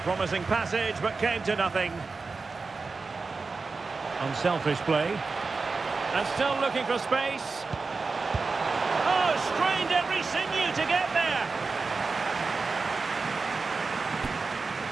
Promising passage, but came to nothing. Unselfish play. And still looking for space. Oh, strained every sinew to get there.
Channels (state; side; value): quieter; left; 4.2 dB